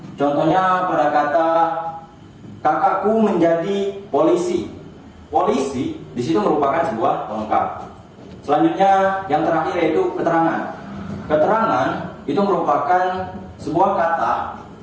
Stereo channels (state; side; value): identical; both; correlation 1.00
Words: contohnya pada kata kakakku menjadi polisi. Polisi di situ merupakan sebuah pelengkap. Selanjutnya yang terakhir yaitu keterangan. Keterangan itu merupakan sebuah kata